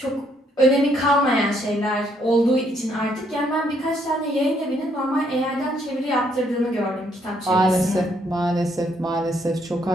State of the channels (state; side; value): normal; both; correlation 0.70